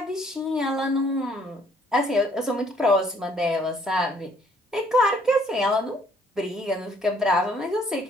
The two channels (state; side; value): normal; both; correlation 0.63